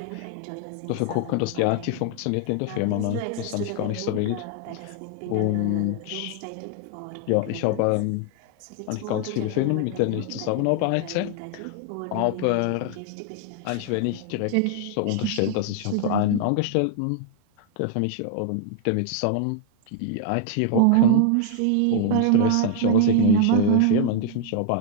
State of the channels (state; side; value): different; both; correlation 0.00